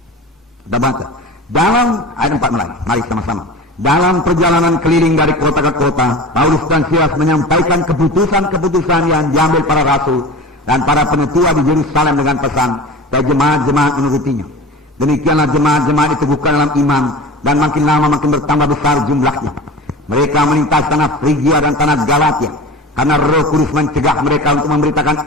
Kita baca dalam ayat 4 mulai. Mari sama-sama. Dalam perjalanan keliling dari kota ke kota, Paulus dan Silas menyampaikan keputusan-keputusan yang diambil para rasul dan para penetua di Yerusalem dengan pesan dan jemaat-jemaat menurutinya. Demikianlah jemaat-jemaat diteguhkan dalam iman dan makin lama makin bertambah besar jumlahnya. Mereka melintas tanah Frigia dan tanah Galatia karena Roh Kudus mencegah mereka untuk memberitakan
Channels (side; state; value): both; normal; correlation 0.35